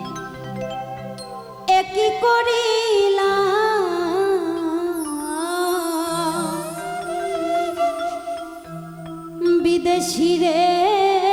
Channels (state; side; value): identical; both; correlation 1.00